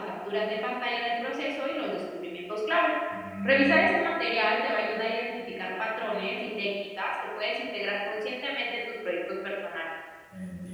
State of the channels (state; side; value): identical; both; correlation 1.00